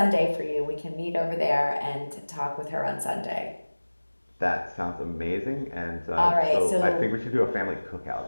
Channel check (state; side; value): inverted; both; correlation -1.00